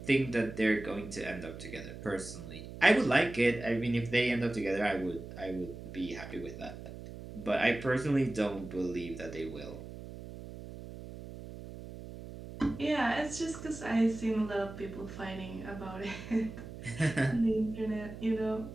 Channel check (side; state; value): right; noise; hum, 12 dB below the sound